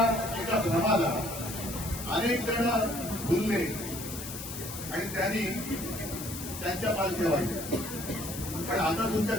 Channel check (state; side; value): noise; left; hiss, 9 dB below the sound